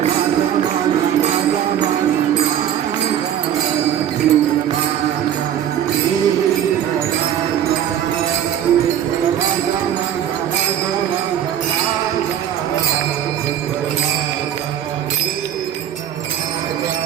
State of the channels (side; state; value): left; quieter; 10.1 dB